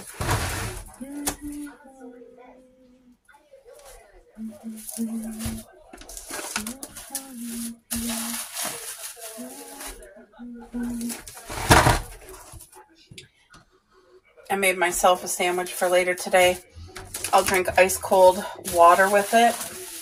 I made myself a sandwich for later today. I'll drink ice cold water with it.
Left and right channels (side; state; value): both; identical; correlation 1.00